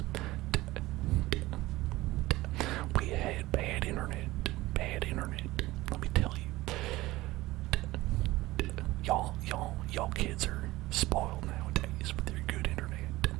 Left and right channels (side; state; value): left; quieter; 18.2 dB